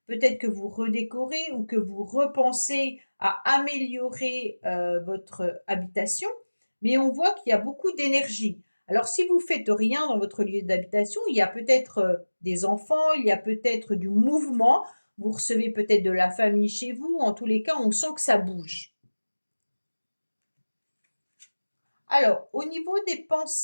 Peut-être que vous redécorez ou que vous repensez à améliorer votre habitation, mais on voit qu'il y a beaucoup d'énergie. Alors, si vous faites rien dans votre lieu d'habitation, il y a peut-être des enfants, il y a peut-être du mouvement. Vous recevez peut-être de la famille chez vous. En tous les cas, on sent que ça bouge. Alors, au niveau des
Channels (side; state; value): both; inverted; correlation -1.00